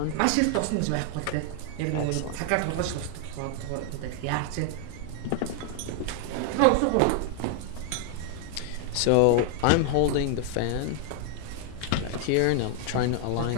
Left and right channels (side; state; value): both; different; correlation 0.00